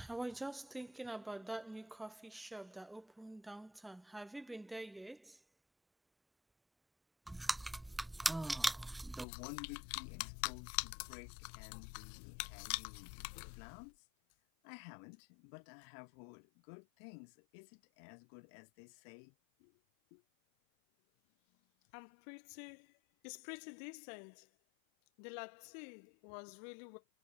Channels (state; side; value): drops out; right; at 9.2 s